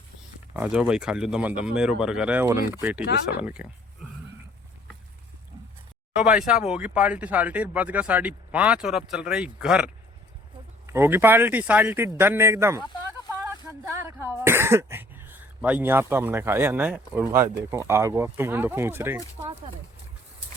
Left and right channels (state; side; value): normal; both; correlation 0.58